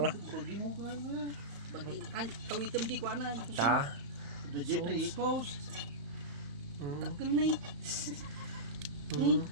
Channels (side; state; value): left; late; 35 ms